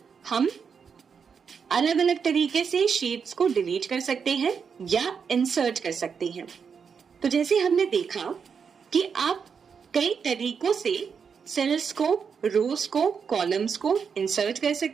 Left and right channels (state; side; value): quieter; left; 6.3 dB